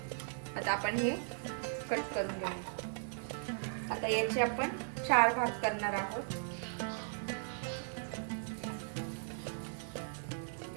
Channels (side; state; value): left; silent; digital silence